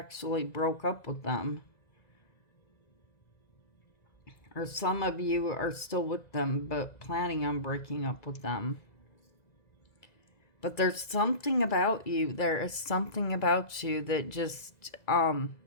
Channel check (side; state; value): right; late; 2.0 ms